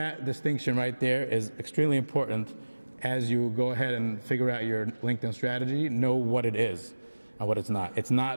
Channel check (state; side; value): inverted; both; correlation -1.00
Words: distinction right there is extremely important as you go ahead and figure out your LinkedIn strategy, know what it is and what it's not. It's